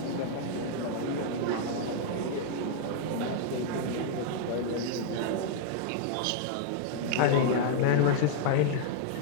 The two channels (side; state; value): both; different; correlation -0.01